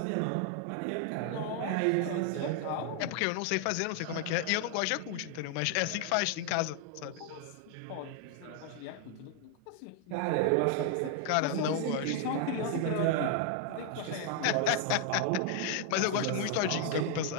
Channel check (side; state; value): both; different; correlation 0.00